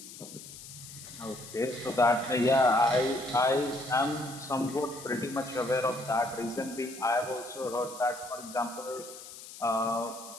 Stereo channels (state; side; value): noise; left; hiss, 14 dB below the sound